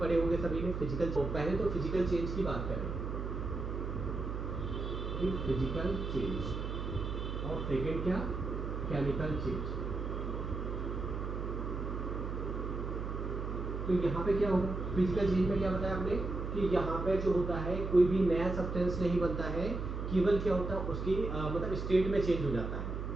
होंगे सभी ने, फिजिकल। तो पहले तो फिजिकल चेंज की बात करें कि फिजिकल चेंज, और सेकेंड क्या, केमिकल चेंज। तो यहाँ पे क्या होगा, फिजिकल चेंज में क्या बताया आपने कि यहाँ पे जो होता है कोई भी नया सब्सटेंस नहीं बनता है, केवल क्या होता है उसकी मतलब स्टेट में चेंज हो जाता है,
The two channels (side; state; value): right; noise; hum, 4 dB below the sound